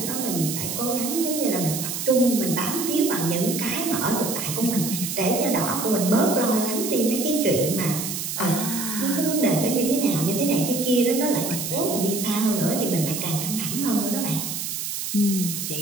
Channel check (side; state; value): right; noise; hiss, 4 dB below the sound